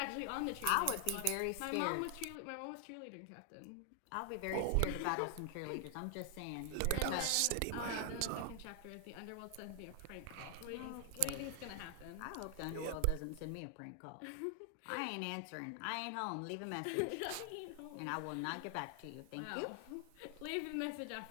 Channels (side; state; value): both; different; correlation 0.00